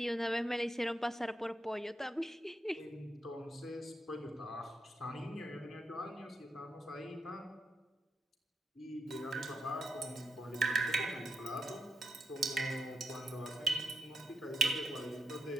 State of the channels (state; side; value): normal; both; correlation 0.82